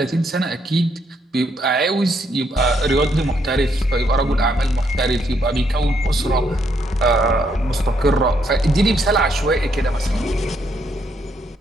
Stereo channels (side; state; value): both; normal; correlation 0.74